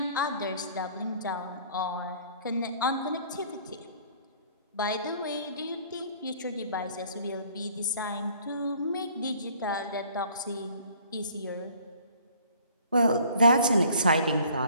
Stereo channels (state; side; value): inverted; both; correlation -0.55